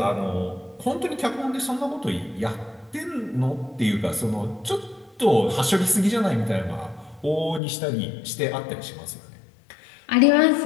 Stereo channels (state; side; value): drops out; right; at 7.6 s